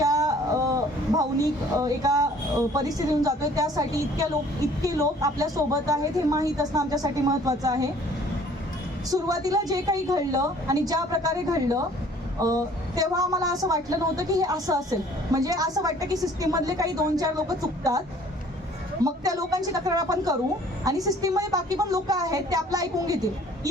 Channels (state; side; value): normal; both; correlation 0.54